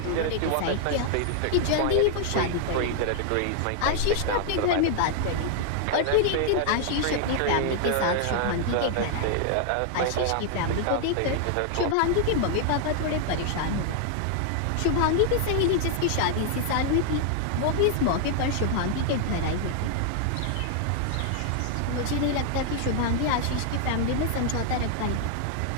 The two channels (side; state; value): both; different; correlation 0.00